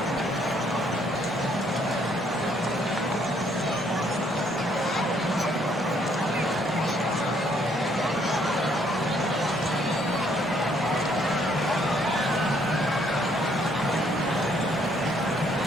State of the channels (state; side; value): normal; both; correlation 0.67